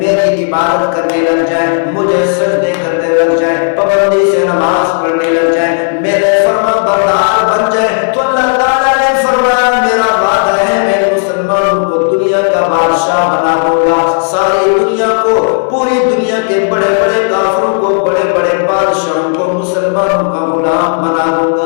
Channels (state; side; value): silent; right; digital silence